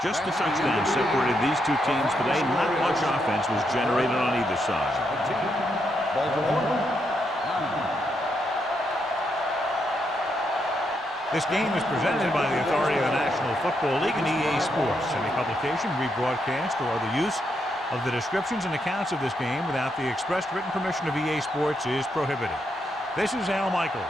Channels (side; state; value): both; normal; correlation 0.80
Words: Just a touchdown separated these two teams today. Not much offense was generated on either side. This game is presented by the authority of the National Football League and EA Sports. Any publication, rebroadcast, or other use of the descriptions and accounts of this game without the expressed written permission of EA Sports is prohibited. This is Al Michaels.